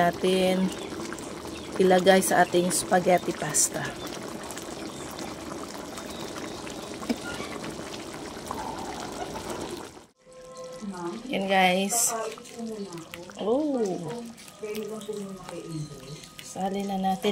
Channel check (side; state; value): both; identical; correlation 1.00